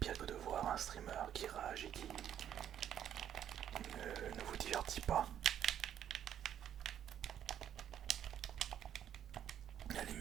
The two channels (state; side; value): quieter; left; 10.0 dB